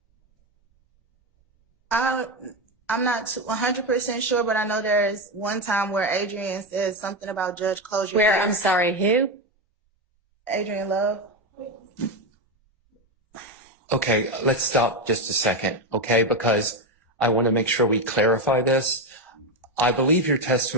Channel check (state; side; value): normal; both; correlation 0.11